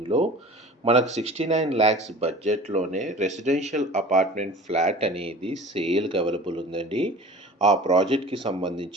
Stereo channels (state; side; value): normal; both; correlation 0.41